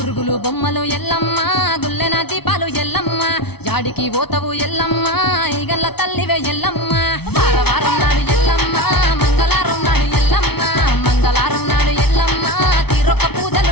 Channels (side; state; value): right; late; 0.97 ms